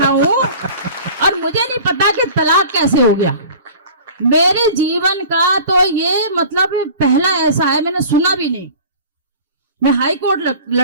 हूं और मुझे नहीं पता कि तलाक कैसे हो गया। मेरे जीवन का तो ये मतलब पहला ऐसा है, मैंने सुना भी नहीं। मैं हाई कोर्ट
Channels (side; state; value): both; inverted; correlation -0.42